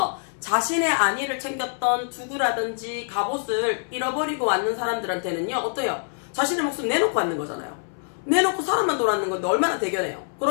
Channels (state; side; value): silent; right; 62 dB below the other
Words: 자신의 안위를 챙겼던 두구라든지 갑옷을 잃어버리고 왔는 사람들한테는요, 어때요? 자신의 목숨 내놓고 왔는 거잖아요. 내놓고 사람만 돌아왔는 건데 얼마나 대견해요.